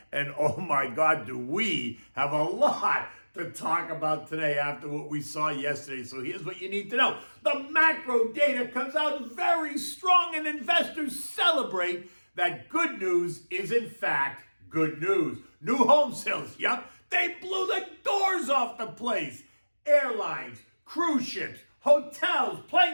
And oh my God, do we have a lot to talk about today after what we saw yesterday. So here's what you need to know. The macro data comes out very strong and investors celebrate that good news is in fact good news. New home sales, yep, they blew the doors off the place. Airlines, cruise ships, hotels,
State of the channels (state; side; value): inverted; both; correlation -1.00